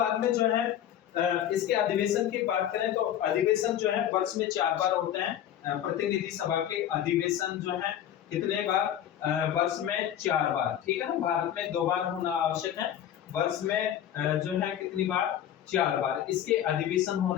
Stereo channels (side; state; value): right; quieter; 10.7 dB